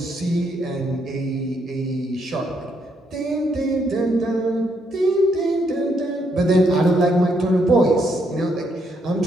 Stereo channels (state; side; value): normal; both; correlation 0.75